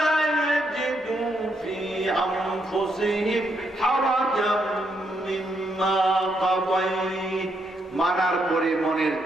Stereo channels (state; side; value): normal; both; correlation 0.77